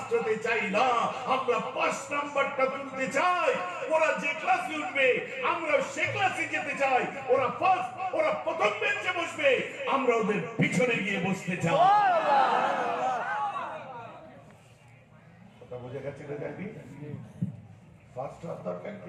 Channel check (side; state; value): both; identical; correlation 1.00